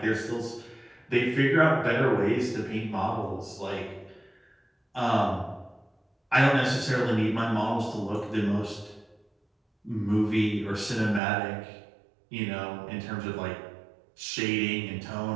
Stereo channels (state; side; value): drops out; left; at 11.2 s